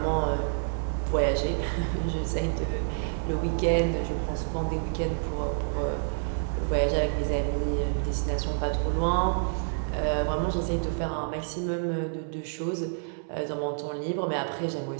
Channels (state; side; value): silent; left; 59 dB below the other